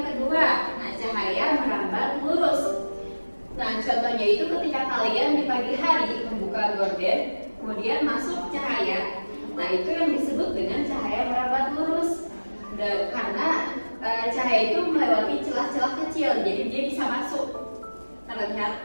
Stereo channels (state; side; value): inverted; both; correlation -1.00